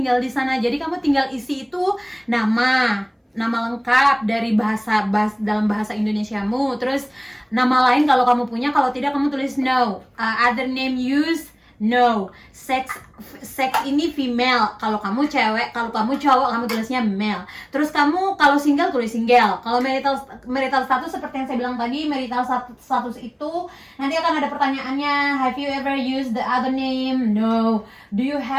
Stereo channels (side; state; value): both; identical; correlation 1.00